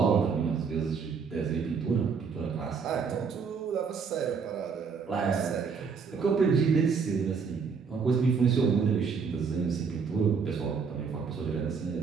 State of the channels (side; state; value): left; quieter; 5.7 dB